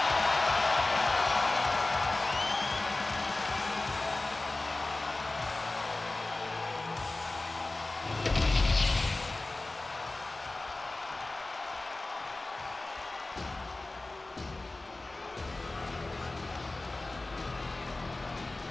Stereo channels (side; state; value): right; quieter; 3.0 dB